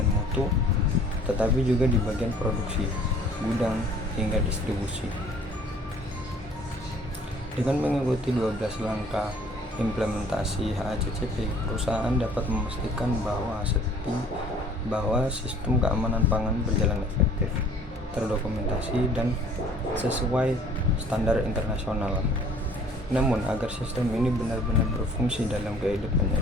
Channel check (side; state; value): both; normal; correlation 0.54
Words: mutu, tetapi juga di bagian produksi, gudang, hingga distribusi. Dengan mengikuti 12 langkah implementasi HACCP, perusahaan dapat memastikan bahwa sistem keamanan pangan berjalan efektif, terdokumentasi, dan sesuai standar internasional. Namun, agar sistem ini benar-benar berfungsi dalam kehidupan